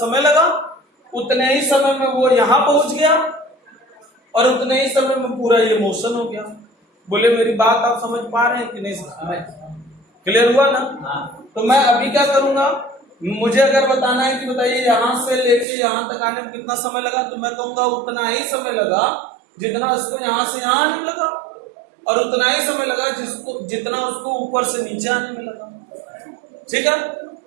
लगा उतने ही समय में वो यहां पहुंच गया और उतने ही समय में पूरा ये मोशन हो गया। बोले मेरी बात आप समझ पा रहे हैं कि नहीं समझ? क्लियर हुआ ना? तो मैं अभी क्या करूंगा, मुझे अगर बताना है कि बताइए यहां से लेके यहां तक आने में कितना समय लगा, तो मैं कहूंगा उतना ही समय लगा जितना इसको यहां से यहां आने में लगा, और उतना ही समय लगा जितना उसको ऊपर से नीचे आने में लगा। ठीक है,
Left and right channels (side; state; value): left; drops out; at 15.7 s